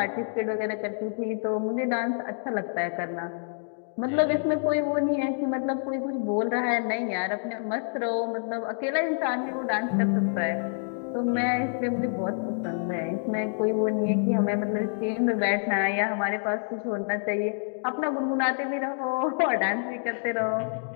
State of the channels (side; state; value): right; silent; digital silence